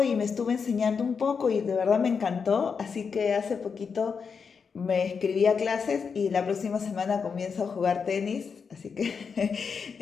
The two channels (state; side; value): quieter; right; 5.8 dB